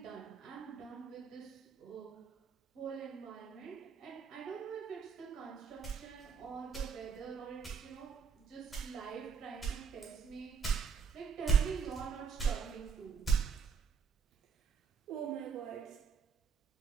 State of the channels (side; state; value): left; quieter; 6.2 dB